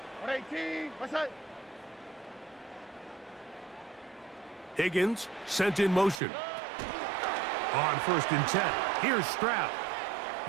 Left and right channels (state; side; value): drops out; left; at 6.2 s